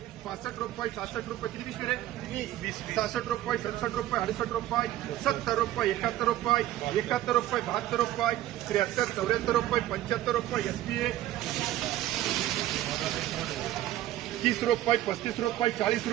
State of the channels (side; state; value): left; quieter; 14.0 dB